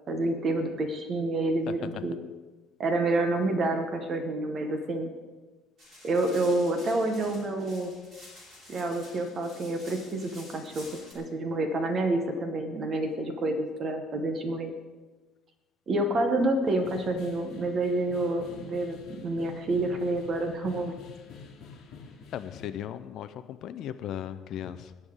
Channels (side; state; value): both; normal; correlation 0.65